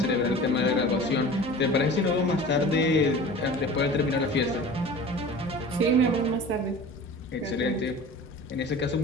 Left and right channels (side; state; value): both; normal; correlation 0.39